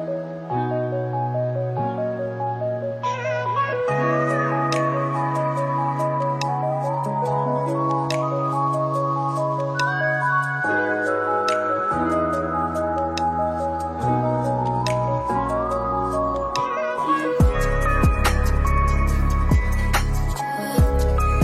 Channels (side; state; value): both; identical; correlation 1.00